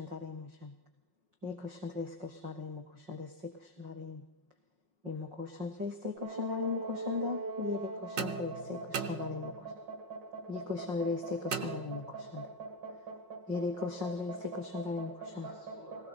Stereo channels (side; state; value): left; late; 5.5 ms